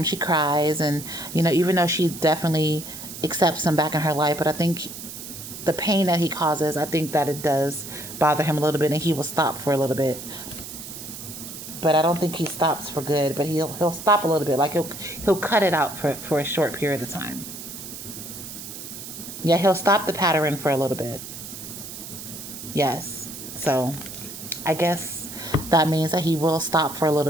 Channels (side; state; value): right; noise; hiss, 11 dB below the sound